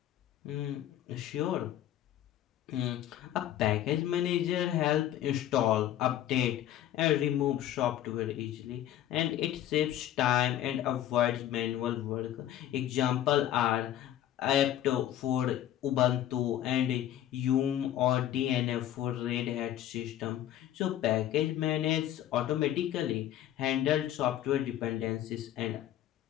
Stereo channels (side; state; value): right; quieter; 12.1 dB